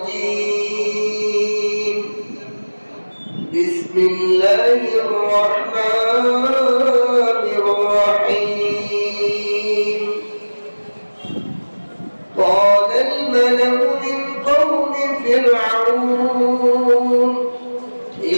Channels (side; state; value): both; inverted; correlation -1.00